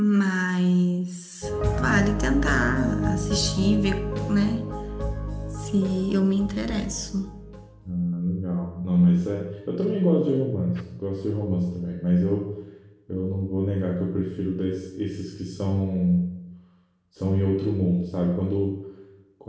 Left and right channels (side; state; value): both; identical; correlation 1.00